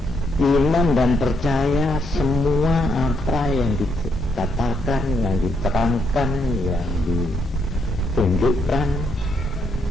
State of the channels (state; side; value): normal; both; correlation 0.75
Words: iman dan percaya semua apa yang dikatakan, yang diterangkan, yang ditunjukkan